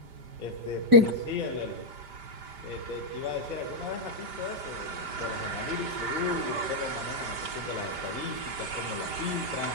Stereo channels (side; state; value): left; late; 5.0 ms